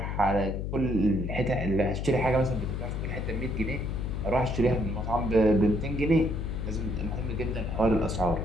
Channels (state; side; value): noise; left; hum, 3 dB below the sound